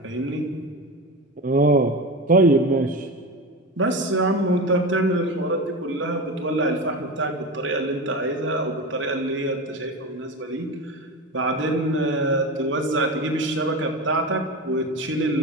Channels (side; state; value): both; normal; correlation 0.24